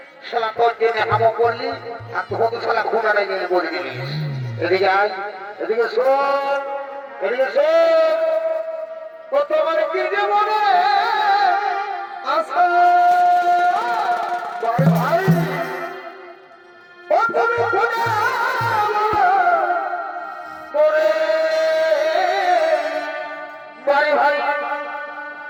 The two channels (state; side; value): identical; both; correlation 1.00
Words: শালা তোর জন্য হামো করলি আর তোকে তো শালা খুঁড়াটা গেলে বলে দিলিস এদিকে আয় এদিকে শোন এদিকে শোন কতবার কি যে মনে আশা ভাই প্রথমে খুঁড়া করে বাড়ি ভাই